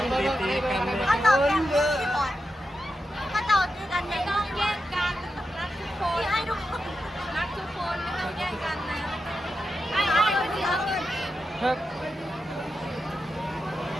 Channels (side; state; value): both; normal; correlation 0.88